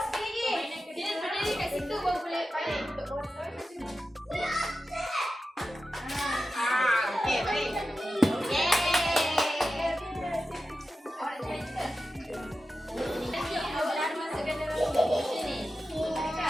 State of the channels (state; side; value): normal; both; correlation 0.92